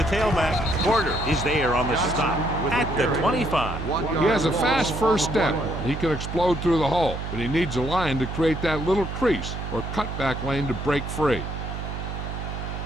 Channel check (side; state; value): right; noise; hum, 6 dB below the sound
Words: tailback. Porter is there on the stop at the 25. He has a fast first step. He can explode through the hole, but he needs a line to create that little crease or cutback lane to break free.